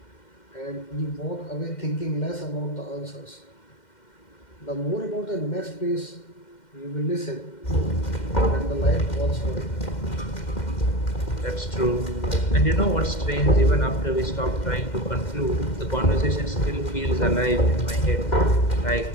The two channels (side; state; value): right; late; 2.1 ms